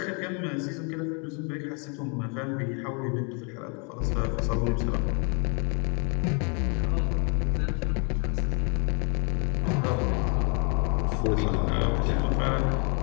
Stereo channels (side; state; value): right; quieter; 35.8 dB